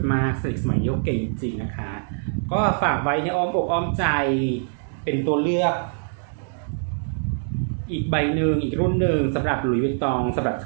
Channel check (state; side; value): silent; left; digital silence